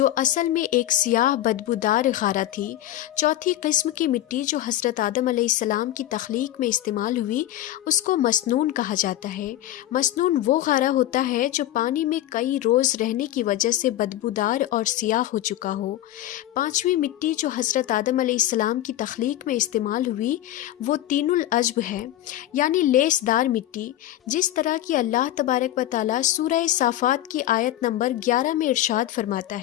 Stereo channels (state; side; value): quieter; right; 13.5 dB